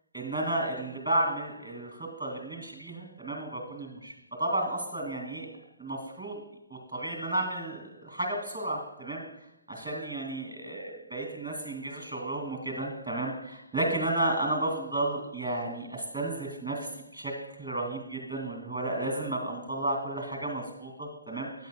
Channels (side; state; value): both; inverted; correlation -0.51